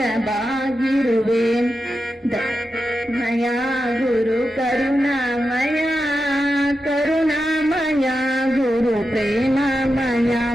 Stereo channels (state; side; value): normal; both; correlation 0.89